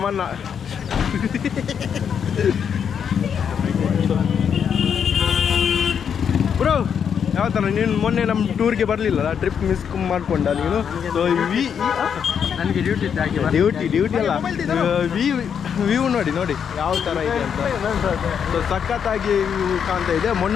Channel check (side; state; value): right; quieter; 7.6 dB